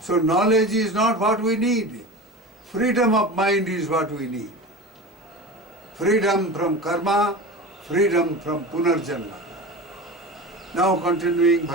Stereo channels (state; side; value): normal; both; correlation 0.31